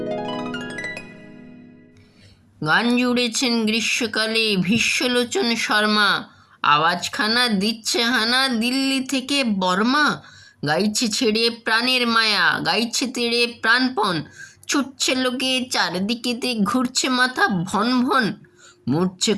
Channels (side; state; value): both; identical; correlation 1.00